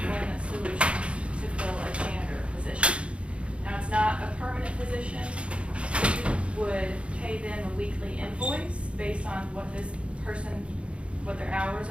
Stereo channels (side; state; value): left; late; 0.059 ms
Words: Solutions to fill a janitor position. Now, it's not a permanent position. We would pay them a weekly invoice based on what this person, what their hours